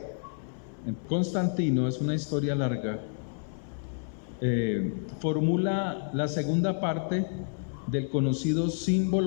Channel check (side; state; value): right; silent; 58 dB below the other